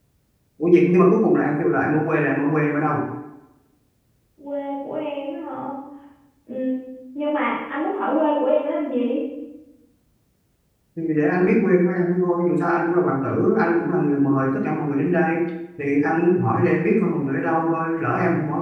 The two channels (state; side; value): identical; both; correlation 1.00